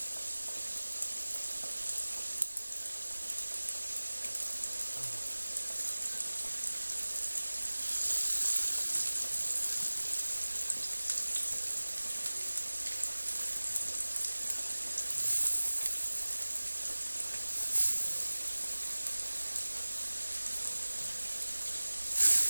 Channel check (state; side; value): inverted; both; correlation -1.00